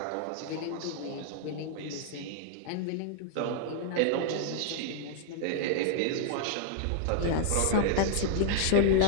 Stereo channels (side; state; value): both; different; correlation -0.01